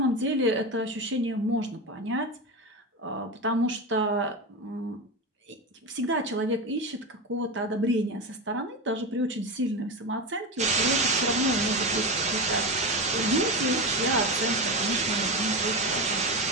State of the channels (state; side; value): normal; both; correlation 0.18